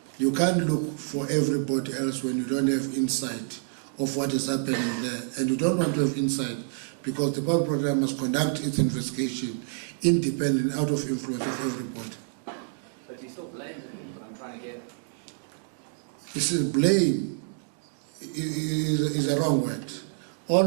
you can't look for everybody else when you don't have insight of what is happening there. And you don't want to have insight because the public program must conduct its investigation independent, out of influence of everybody. But you still blame him, but I'm trying to get... You see, blame is a wrong word. All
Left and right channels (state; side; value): silent; left; digital silence